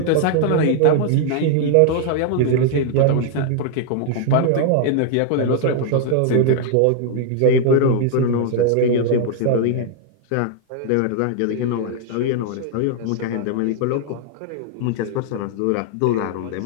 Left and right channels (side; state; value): both; different; correlation 0.00